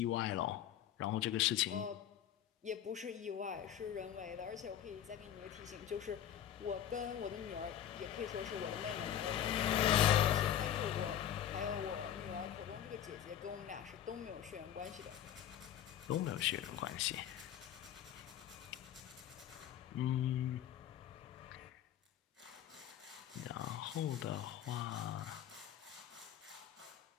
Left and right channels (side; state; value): right; quieter; 10.5 dB